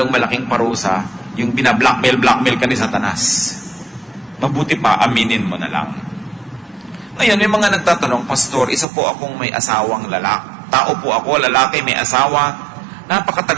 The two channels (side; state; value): left; drops out; at 8.8 s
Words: malaking parusa, yung binablockmail ka ni Satanas. Mabuti pa, aminin mo na lang. Ngayon, may mga nagtatanong, Pastor, isa po akong may asawang lalaki. Tao po ako, lalaki, may asawa.